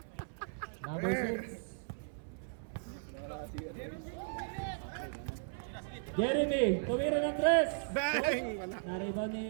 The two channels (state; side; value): silent; left; 53 dB below the other